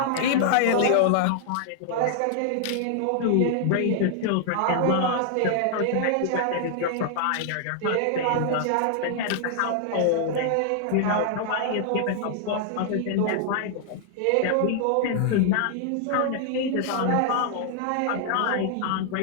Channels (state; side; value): different; both; correlation 0.00